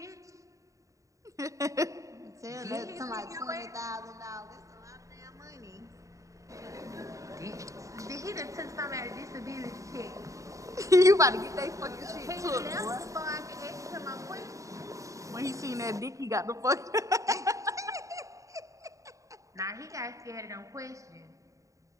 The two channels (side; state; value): left; late; 0.16 ms